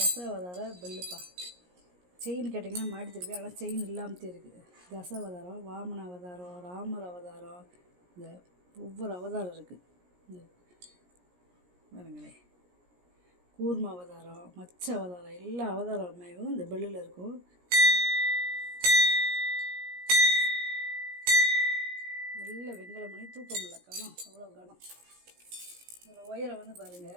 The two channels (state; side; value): late; left; 17 ms